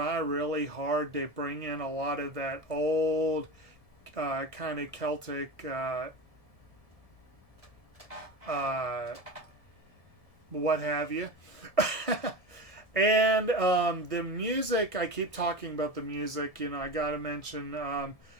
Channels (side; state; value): right; late; 1.7 ms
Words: really hard to bring in a lot of that old kind of Celtic what have you. And the music, I keep talking about the music, I got to mention,